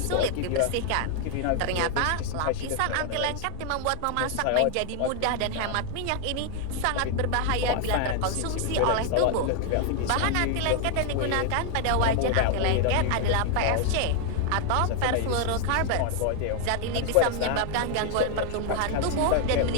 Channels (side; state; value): both; different; correlation 0.00